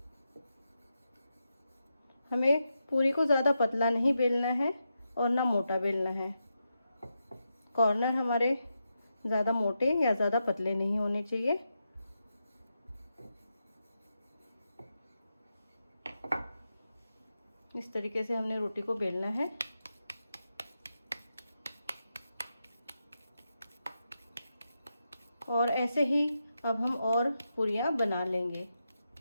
हमें पूरी को ज़्यादा पतला नहीं बेलना है और ना मोटा बेलना है। कॉर्नर हमारे ज़्यादा मोटे या ज़्यादा पतले नहीं होने चाहिए। इस तरीके से हमने रोटी को बेलना है। और ऐसे ही अब हम और पूरियाँ बना लेंगे।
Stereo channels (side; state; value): both; inverted; correlation -0.87